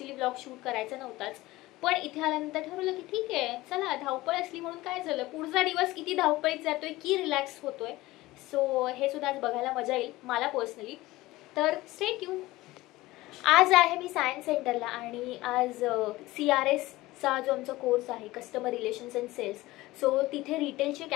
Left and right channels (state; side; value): quieter; right; 18.6 dB